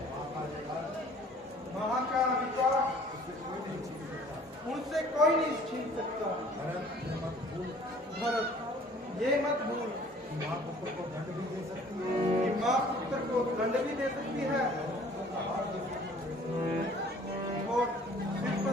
वहां का अधिकार उनसे कोई नहीं छीन सकता। भरत, ये मत भूल कि माँ पुत्र को दंड भी दे सकती है और सिर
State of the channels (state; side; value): normal; both; correlation 0.53